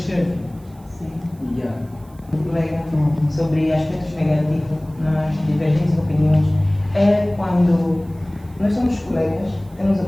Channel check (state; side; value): noise; right; hiss, 30 dB below the sound